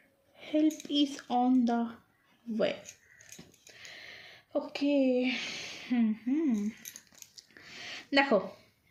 Help is on the way. Okay, দেখো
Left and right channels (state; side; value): identical; both; correlation 1.00